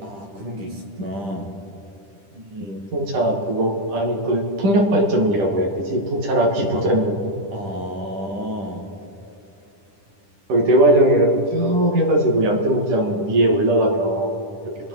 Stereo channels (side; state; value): left; late; 10 ms